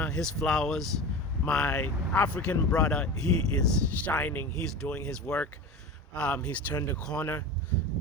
his flowers. My African brother, he is shining. He's doing his work. He's turned the corner,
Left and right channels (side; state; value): both; normal; correlation 0.30